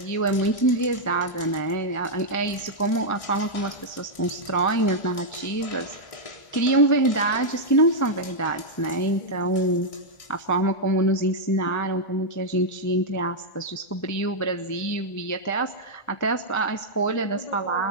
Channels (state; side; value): late; right; 1.4 ms